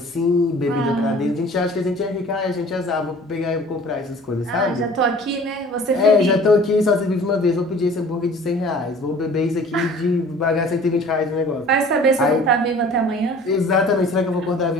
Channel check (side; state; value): both; normal; correlation 0.48